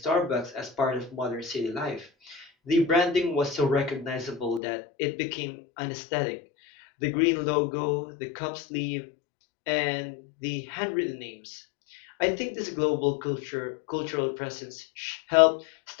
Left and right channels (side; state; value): right; drops out; at 4.6 s